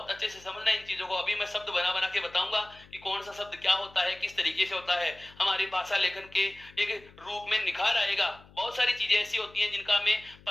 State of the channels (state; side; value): noise; left; hum, 24 dB below the sound